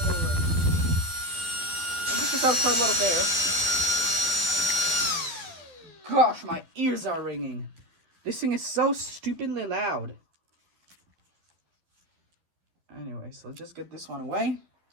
over. And this is out quite a lot of air. Gosh, my ears are ringing. This thing is so stupidly loud. Anyway, so just get this one away.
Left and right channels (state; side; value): late; left; 12 ms